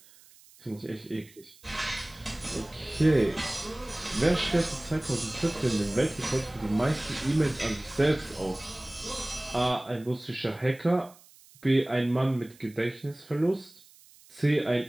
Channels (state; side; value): noise; right; hiss, 25 dB below the sound